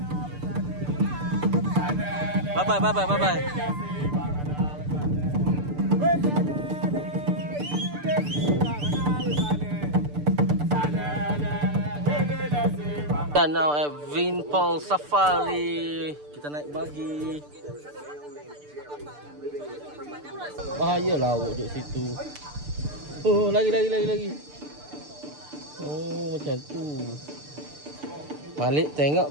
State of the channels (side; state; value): left; late; 6.8 ms